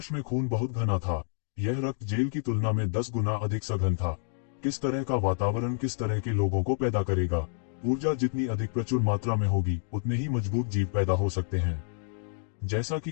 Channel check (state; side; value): silent; right; digital silence